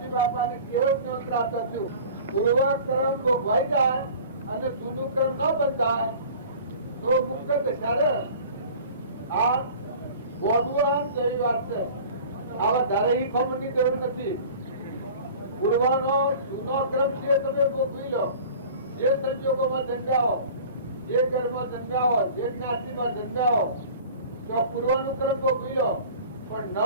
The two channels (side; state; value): both; inverted; correlation -0.43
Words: બાપાને કેવળ જ્ઞાન પ્રાપ્ત થયું। પૂર્વક્રમ ભોગવાઈ જાય અને જૂનું ક્રમ ન બંધાય તો મુક્ત દશા। આ બોડુઆન જેવી વાત છે। આવા ધારે ખમણની જરૂર નથી। પૂર્વનો જૂનો ક્રમ છે તમે ભોગવી લો। જે સંજોગોમાં જન્મ્યા હો, જે ઘરમાં જન્મ્યા હો, જે જ્ઞાતિમાં જન્મ્યા હો, તો પૂર્વનું ક્રમ ભોગવી લો। પણ